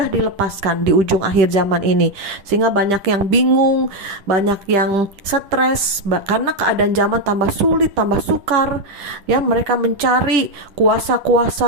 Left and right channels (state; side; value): late; left; 10 ms